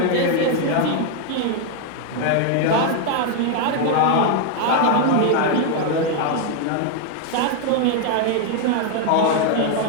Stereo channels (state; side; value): different; both; correlation 0.00